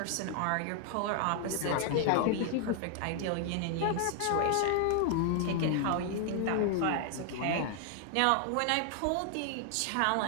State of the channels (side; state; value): both; different; correlation 0.00